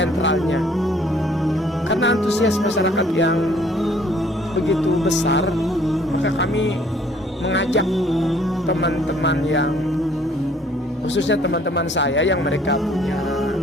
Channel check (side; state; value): both; normal; correlation 0.59